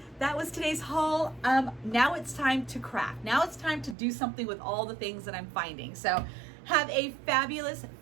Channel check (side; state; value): left; drops out; at 4.0 s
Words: that was today's haul. Now it's time to craft. Now it's time to do something with all the things that I'm finding. So have a fabulous,